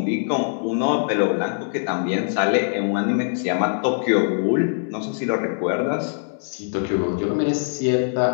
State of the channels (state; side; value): silent; right; digital silence